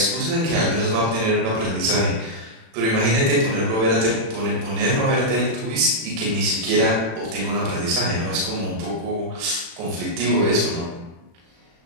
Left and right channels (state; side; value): late; left; 36 ms